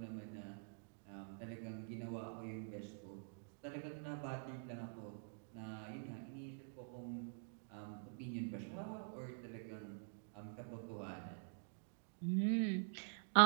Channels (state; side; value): silent; left; digital silence